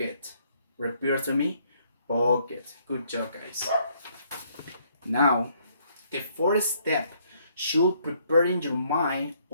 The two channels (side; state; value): both; inverted; correlation -0.68